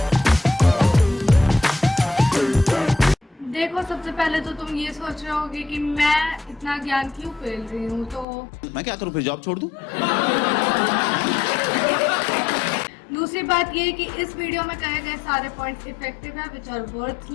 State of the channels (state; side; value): drops out; right; at 8.2 s